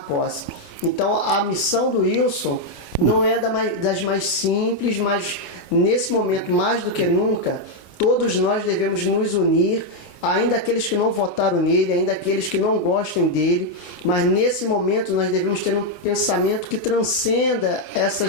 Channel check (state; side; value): late; right; 26 ms